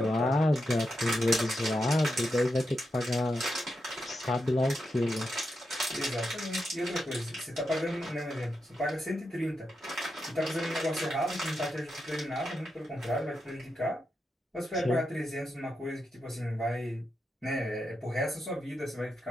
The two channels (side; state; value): both; normal; correlation 0.86